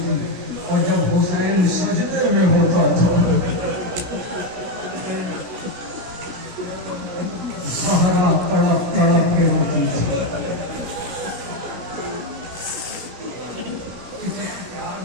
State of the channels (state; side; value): late; left; 16 ms